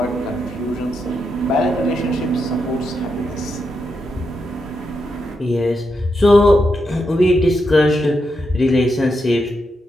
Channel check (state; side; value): normal; both; correlation 0.84